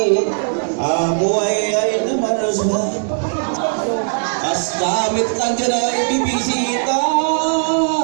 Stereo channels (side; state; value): left; silent; digital silence